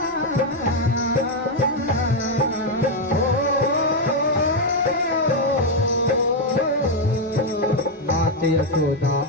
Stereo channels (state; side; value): normal; both; correlation 0.02